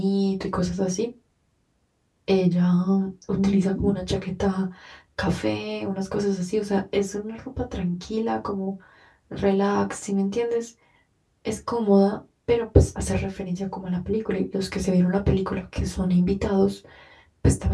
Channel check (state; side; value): identical; both; correlation 1.00